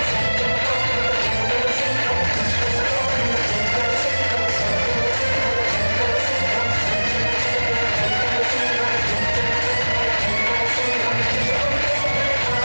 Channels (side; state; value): both; inverted; correlation -1.00